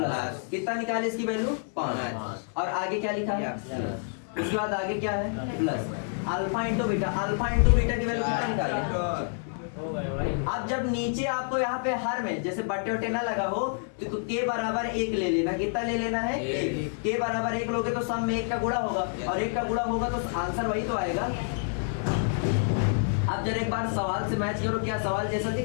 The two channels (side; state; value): right; silent; digital silence